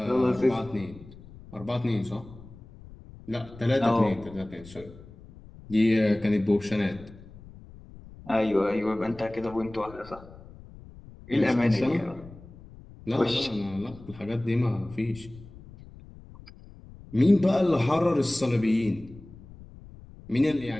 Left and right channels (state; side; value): noise; left; rumble, 19 dB below the sound